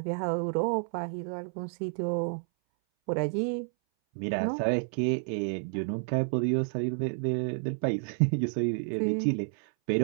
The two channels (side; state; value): left; silent; 58 dB below the other